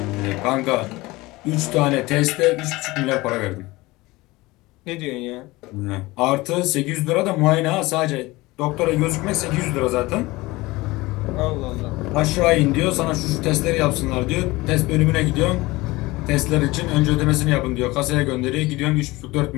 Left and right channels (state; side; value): quieter; right; 20.9 dB